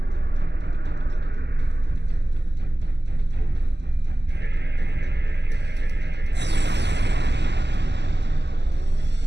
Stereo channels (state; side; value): late; left; 0.50 ms